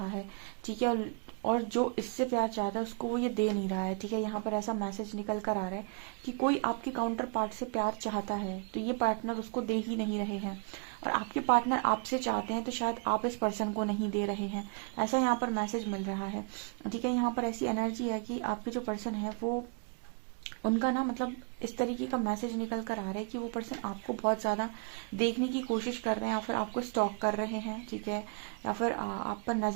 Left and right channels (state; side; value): quieter; left; 35.8 dB